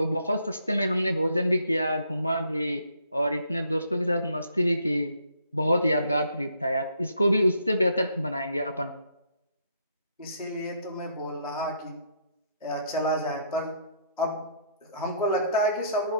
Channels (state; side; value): inverted; both; correlation -0.69